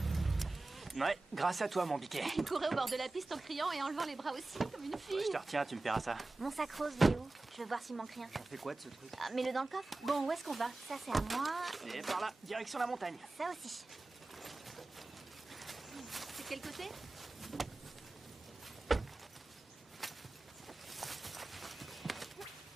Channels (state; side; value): quieter; left; 3.1 dB